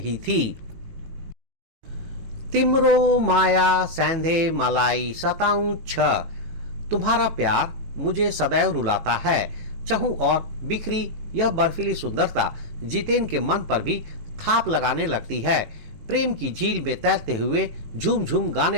थी। तिम्रो माया सैंधे मलाई सताऊं छ, तुम्हारा प्यार मुझे सदैव रुलाता है। चहु और बिखरी यह बर्फीली सुंदरता जितेन के मन पर भी थाप लगाने लगती है। प्रेम की झील में तैरते हुए झूम झूम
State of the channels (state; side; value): late; left; 18 ms